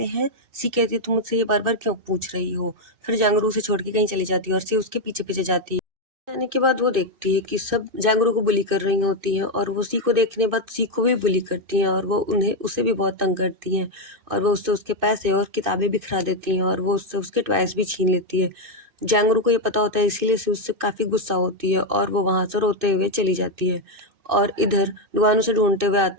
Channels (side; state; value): left; late; 2.6 ms